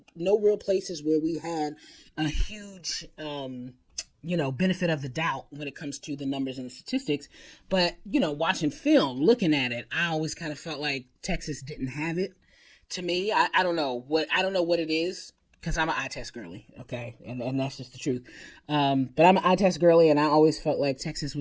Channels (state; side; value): identical; both; correlation 1.00